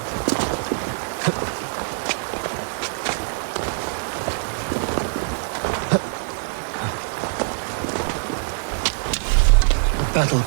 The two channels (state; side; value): silent; left; 63 dB below the other